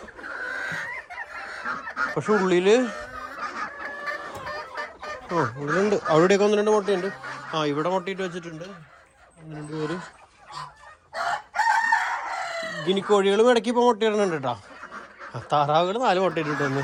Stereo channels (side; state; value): both; identical; correlation 1.00